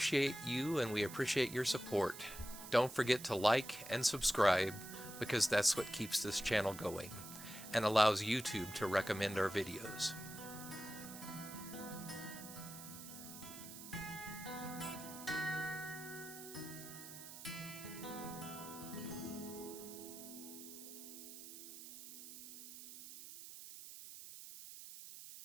you and we appreciate your support. Don't forget to like and subscribe, because that's what keeps this channel going and allows YouTube to recommend our videos.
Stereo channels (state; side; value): noise; right; hiss, 12 dB below the sound